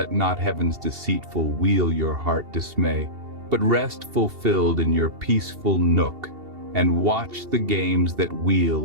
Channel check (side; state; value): left; late; 2.7 ms